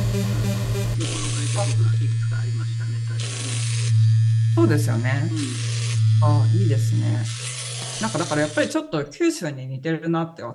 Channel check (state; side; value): identical; both; correlation 1.00